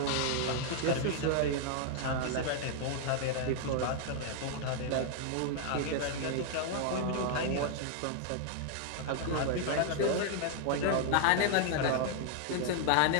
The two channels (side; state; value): both; different; correlation 0.00